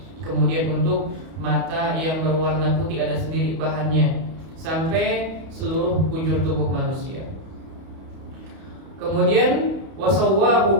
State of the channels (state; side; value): late; left; 31 ms